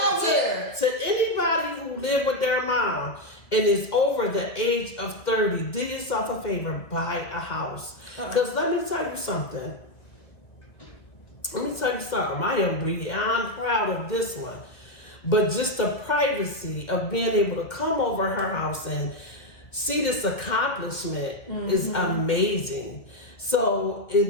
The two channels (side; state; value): right; late; 1.7 ms